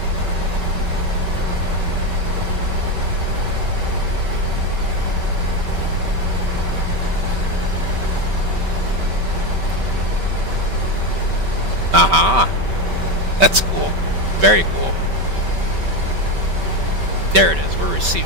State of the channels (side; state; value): left; late; 5.2 ms